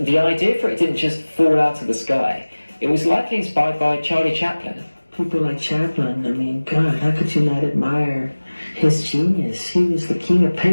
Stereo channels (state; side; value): inverted; both; correlation -1.00